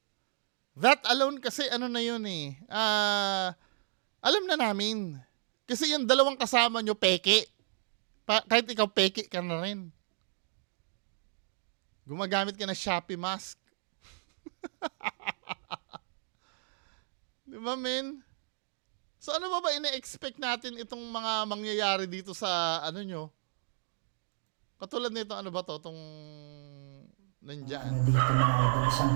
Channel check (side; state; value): left; silent; digital silence